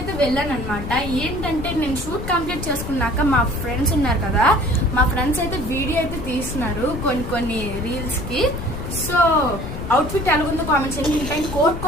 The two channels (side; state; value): left; noise; rumble, 7 dB below the sound